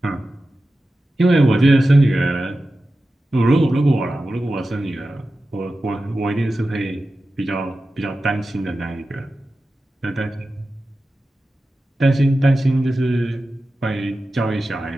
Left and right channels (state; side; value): normal; both; correlation 0.93